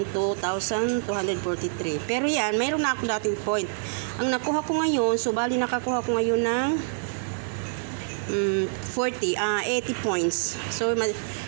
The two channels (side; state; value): left; silent; digital silence